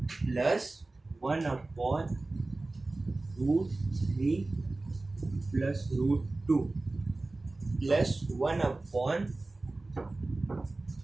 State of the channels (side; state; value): left; quieter; 3.1 dB